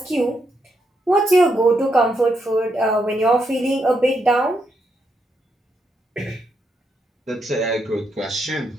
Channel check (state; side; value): normal; both; correlation 0.80